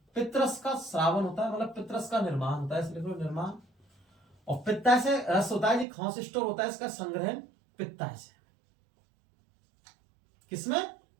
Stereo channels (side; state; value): left; drops out; at 5.9 s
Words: पित्तरस का श्रावण होता है, मतलब पित्तरस का निर्माण होता है, इसलिए निर्माण। और पित्ताशय रस होता है, खांस स्टोर होता है, इसका संग्रहण पित्ताशय। किसमें,